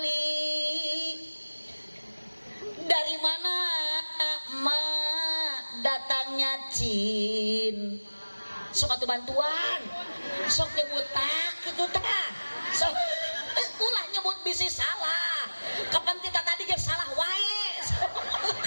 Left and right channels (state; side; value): inverted; both; correlation -1.00